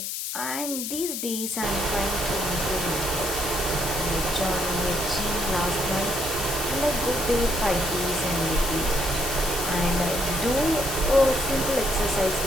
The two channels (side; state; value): left; noise; hiss, 4 dB below the sound